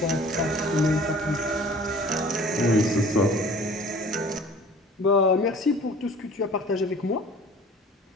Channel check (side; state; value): both; normal; correlation 0.47